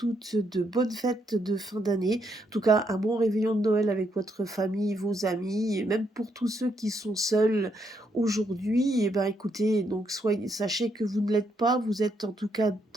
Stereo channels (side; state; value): both; normal; correlation 0.76